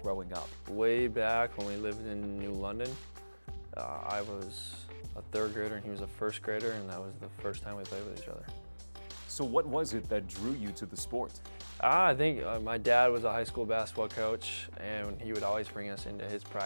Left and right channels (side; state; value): both; inverted; correlation -1.00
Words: growing up? Way back when we lived in New London, I was a third grader and he was a first grader, and that was the first time we played with each other. So what was it that drew you to the sport? I think my dad was a high school basketball coach, and he would always bring us into his